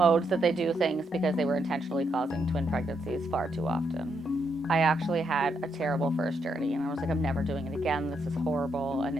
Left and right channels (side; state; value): both; normal; correlation 0.78